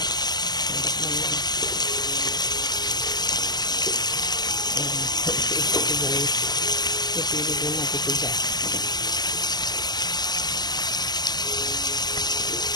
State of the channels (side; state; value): right; late; 0.20 ms